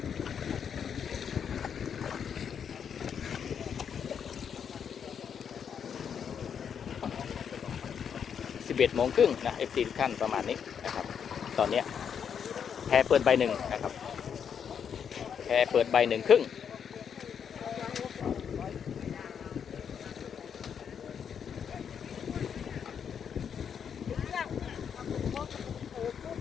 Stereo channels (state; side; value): quieter; right; 7.6 dB